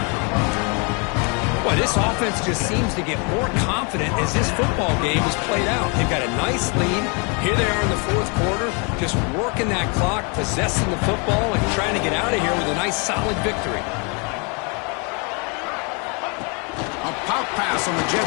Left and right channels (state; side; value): quieter; right; 34.0 dB